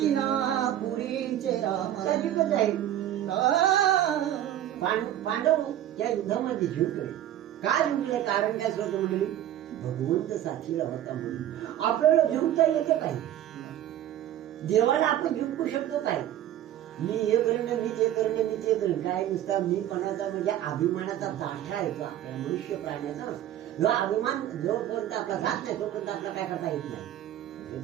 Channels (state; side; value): quieter; left; 12.0 dB